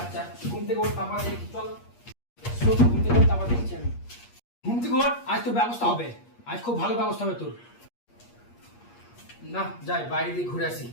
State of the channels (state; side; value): late; right; 8.5 ms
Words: ঘুম থেকে ওঠ, তারপর দেখি। চল শোন, ঘুম থেকে ওঠ, তারপর দেখছি আমি। ঘুম থেকে ওঠ, আজ তোর ব্যবস্থা হবে। আজ খুব ভালো ব্যবস্থা হবে তোর। না যাই, বাইরে দিয়ে ঘুরে আসি।